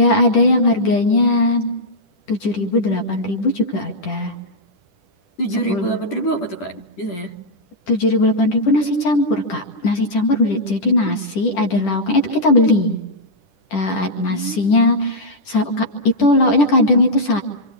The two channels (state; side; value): late; right; 10 ms